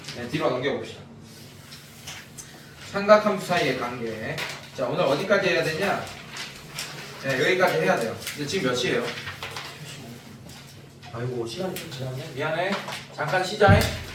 네, 뒤로 넘겨봅시다. 삼각함수 사이의 관계. 자, 오늘 어디까지 해야 되냐? 네, 여기까지 해야 돼요. 근데 지금 몇 시예요? 아이고 시간이 좀 지났네. 미안해. 잠깐 쉬자.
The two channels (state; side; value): identical; both; correlation 1.00